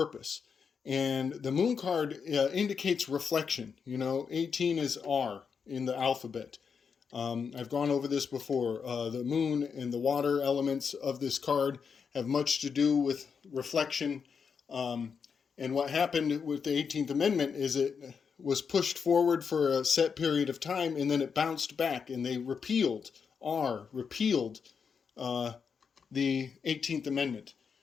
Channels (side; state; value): right; quieter; 6.2 dB